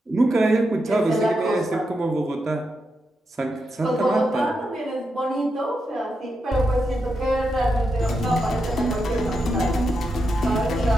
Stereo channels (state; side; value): normal; both; correlation 0.85